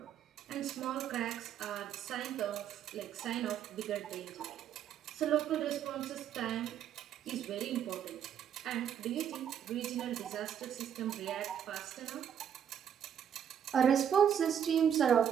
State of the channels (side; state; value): left; quieter; 9.0 dB